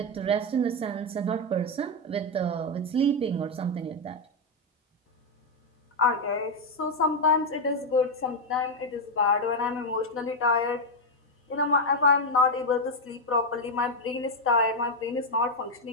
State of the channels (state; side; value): normal; both; correlation 0.03